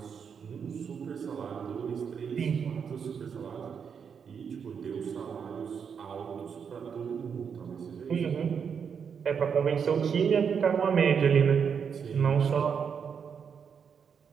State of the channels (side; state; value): left; quieter; 6.8 dB